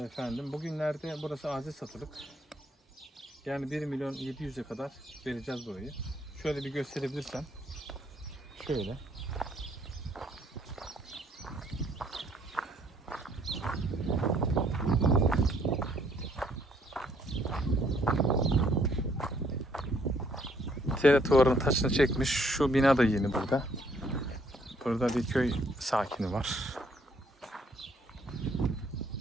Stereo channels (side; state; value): both; normal; correlation 0.66